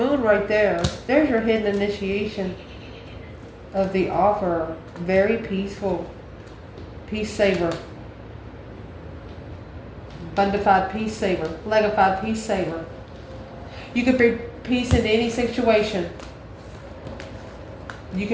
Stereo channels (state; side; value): identical; both; correlation 1.00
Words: right there. There's your hidden initiation of the offer. Very peaceful. Peace saver. Bundified peace saver. Legified peace saver. You could bring peace into any situation. You